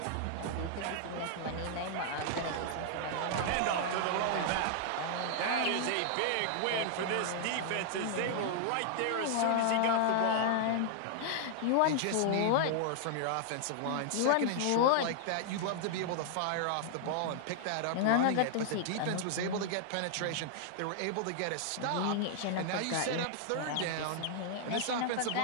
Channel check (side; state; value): both; different; correlation -0.01